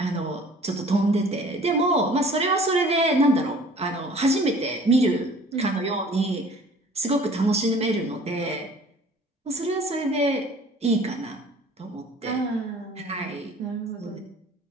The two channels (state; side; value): normal; both; correlation 0.50